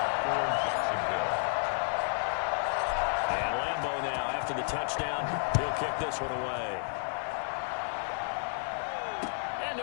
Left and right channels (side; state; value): right; silent; 57 dB below the other